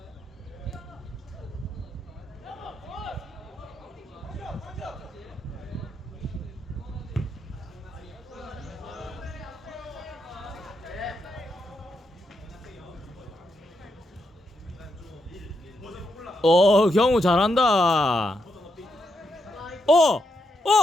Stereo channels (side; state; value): both; normal; correlation 0.82